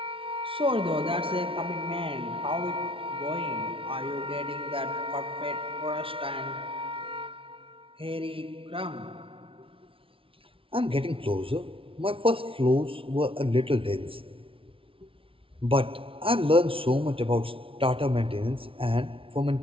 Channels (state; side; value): late; left; 0.26 ms